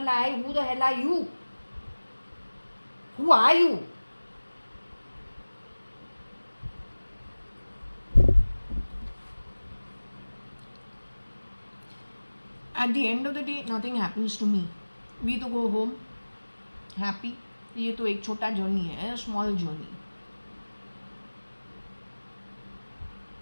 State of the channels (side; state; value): both; inverted; correlation -1.00